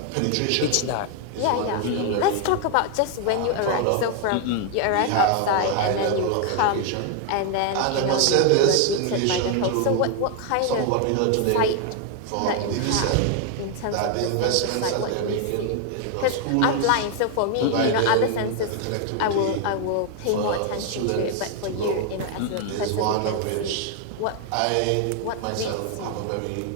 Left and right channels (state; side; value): different; both; correlation 0.00